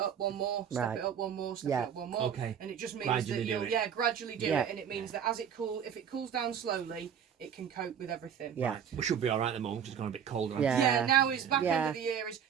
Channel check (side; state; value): left; quieter; 8.2 dB